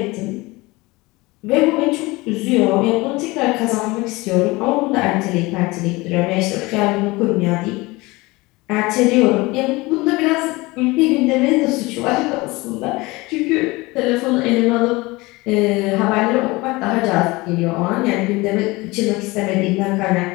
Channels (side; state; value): right; quieter; 22.5 dB